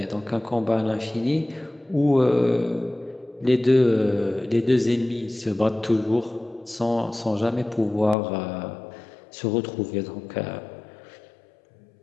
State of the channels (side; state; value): right; drops out; at 8.2 s